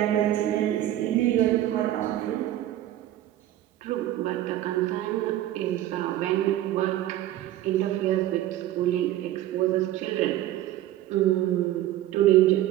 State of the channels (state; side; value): quieter; left; 13.7 dB